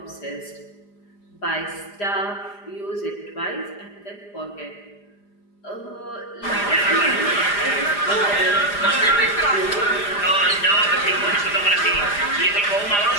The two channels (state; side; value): late; right; 4.9 ms